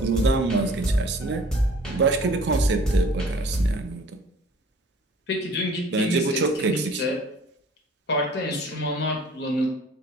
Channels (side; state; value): both; normal; correlation 0.51